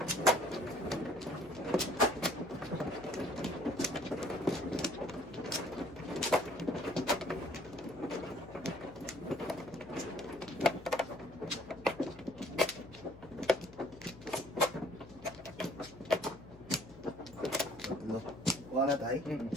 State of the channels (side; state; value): left; noise; hum, 19 dB below the sound